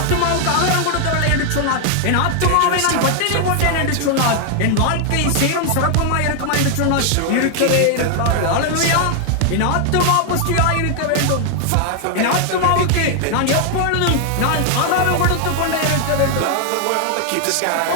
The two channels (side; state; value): both; different; correlation 0.00